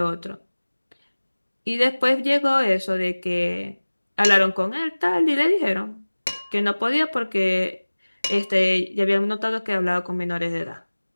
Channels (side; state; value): both; inverted; correlation -1.00